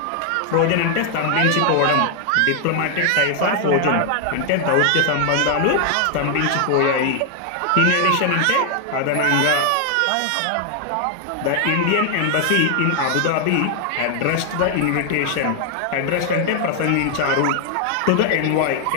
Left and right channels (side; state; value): both; different; correlation 0.00